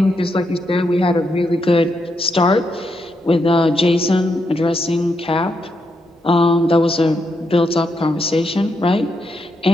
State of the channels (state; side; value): normal; both; correlation 0.81